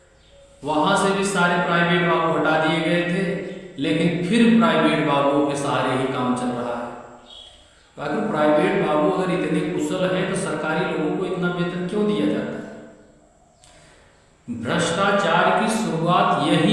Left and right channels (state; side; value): identical; both; correlation 1.00